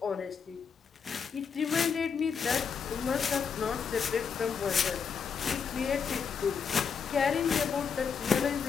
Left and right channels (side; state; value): right; quieter; 6.3 dB